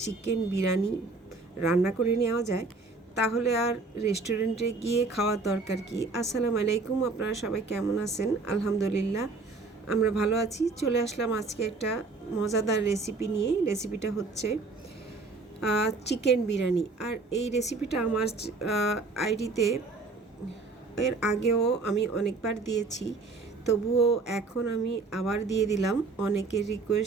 চিকেন বিরিয়ানি রান্না করে নেওয়া যায় তাহলে আর রেস্টুরেন্টে গিয়ে খাওয়ার দরকার কি। আসসালামু আলাইকুম, আপনারা সবাই কেমন আছেন? আলহামদুলিল্লাহ আমরা ভালো আছি। চলে আসলাম আজকে একটা মজাদার রেসিপি নিয়ে। রেসিপিটা হচ্ছে চিকেন বিরিয়ানি। আর এই রেসিপিটা আমার আইডিতে এর আগেও আমি অনেকবার দিয়েছি, তবুও এখন আমি আবার দিয়ে দিলাম অনেকের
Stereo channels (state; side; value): quieter; left; 3.8 dB